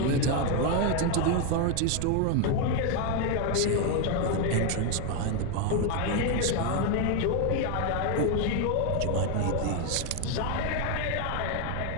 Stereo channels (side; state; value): both; different; correlation 0.01